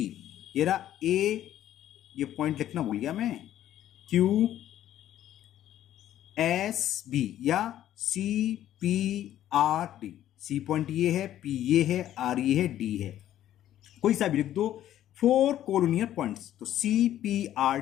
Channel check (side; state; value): right; quieter; 12.2 dB